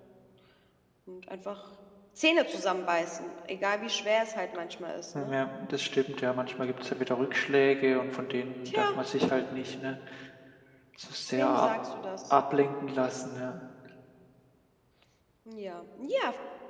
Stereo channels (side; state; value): both; identical; correlation 1.00